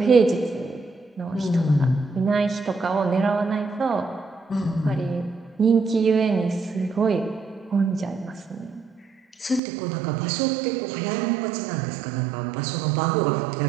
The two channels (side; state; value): left; drops out; at 9.6 s